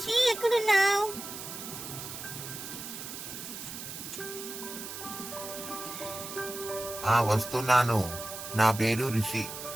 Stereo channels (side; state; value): right; noise; hiss, 9 dB below the sound